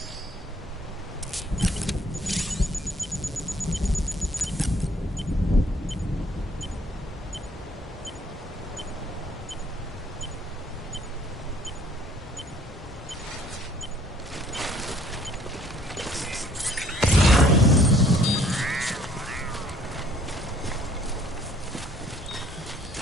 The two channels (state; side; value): normal; both; correlation 0.60